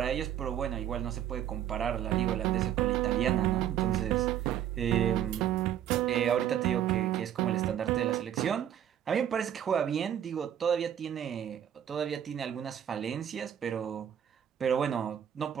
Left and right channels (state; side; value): quieter; left; 10.1 dB